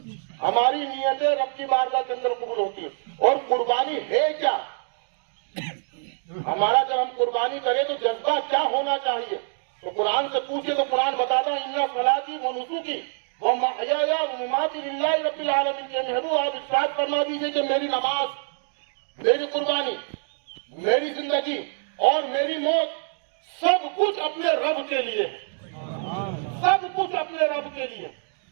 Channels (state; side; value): silent; left; 61 dB below the other